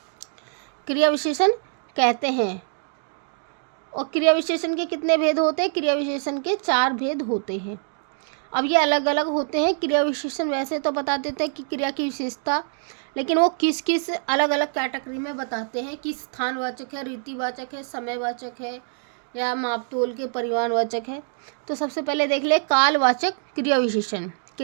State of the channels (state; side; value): silent; left; 62 dB below the other